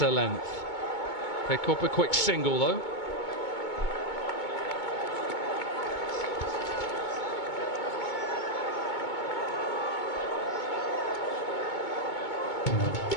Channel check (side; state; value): right; late; 2.2 ms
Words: length. Pick up a quick single though.